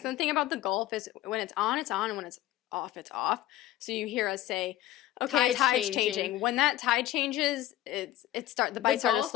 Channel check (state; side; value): quieter; right; 14.2 dB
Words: and the thing about the Gulf is when it's on, and when it's off. So you hear us say, okay, tide's changing. When that tide changes, the bites start to